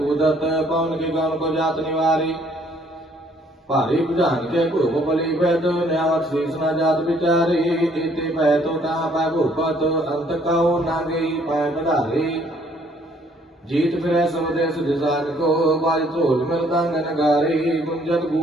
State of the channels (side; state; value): both; normal; correlation 0.63